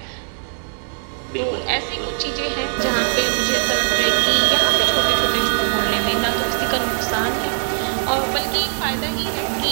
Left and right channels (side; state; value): left; silent; digital silence